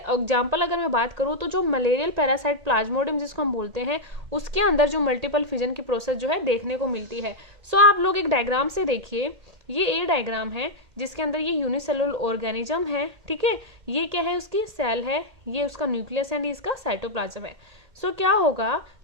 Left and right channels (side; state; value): left; late; 1.8 ms